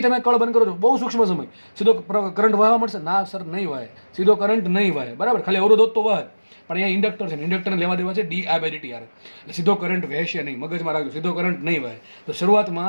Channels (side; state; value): both; inverted; correlation -1.00